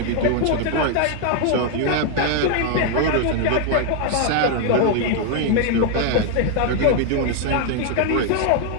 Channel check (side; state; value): both; different; correlation 0.00